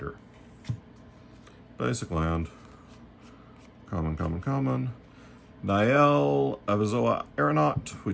Basic land. Common. Nael, Avizoa Aeronaut. We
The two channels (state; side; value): identical; both; correlation 1.00